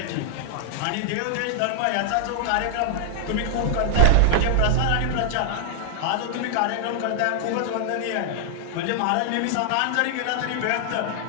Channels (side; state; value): both; different; correlation 0.00